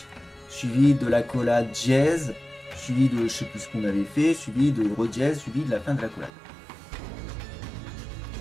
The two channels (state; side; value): drops out; left; at 6.3 s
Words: suivi de la collade dièse, suivi de je sais plus ce qu'on avait fait, suivi de redièse, suivi de la fin de la collade.